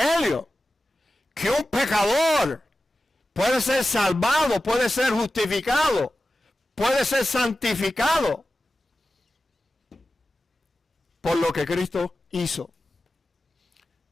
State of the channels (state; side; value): normal; both; correlation 0.94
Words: Que un pecador puede ser salvado, puede ser justificado, puede ser santificado por lo que Cristo hizo.